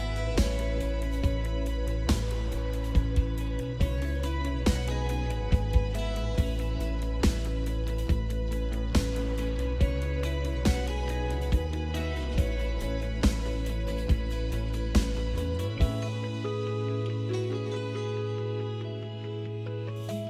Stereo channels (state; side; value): identical; both; correlation 1.00